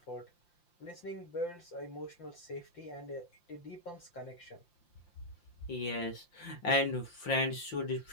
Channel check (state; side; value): late; right; 5.8 ms